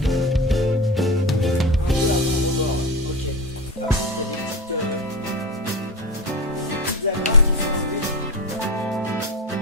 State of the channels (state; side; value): normal; both; correlation 0.22